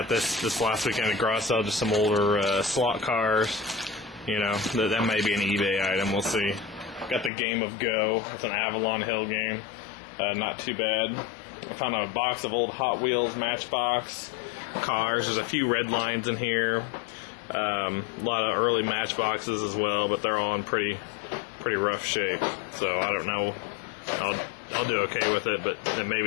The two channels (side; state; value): right; drops out; at 7.3 s